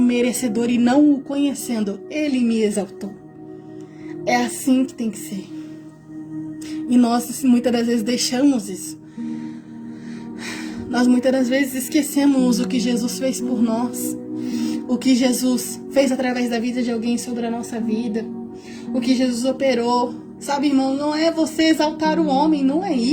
merecedor e não o conhecendo, ele me exaltou. É assim que tem que ser. E nós muitas das vezes deixamos isso. Nós muitas das vezes esquecemos o que Jesus fez por nós, o que Jesus fez através da vida de alguém sobre a nossa vida, o que Jesus operou. Sabe, irmão, não é você exaltar o homem, não é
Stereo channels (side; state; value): both; identical; correlation 1.00